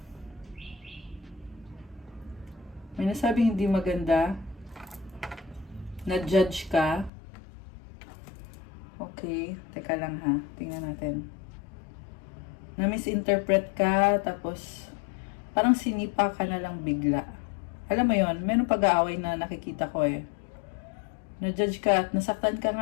May nasabing hindi maganda. Na-judge ka. Okay, teka lang ha. Tingnan natin. Na-misinterpret ka, tapos parang sinipa ka na lang bigla. Alam mo yon, meron pag-aaway na nakikita ko eh. Na-judge ka at nasaktan ka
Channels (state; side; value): drops out; right; at 7.1 s